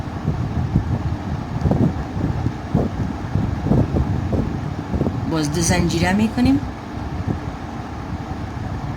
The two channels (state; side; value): identical; both; correlation 1.00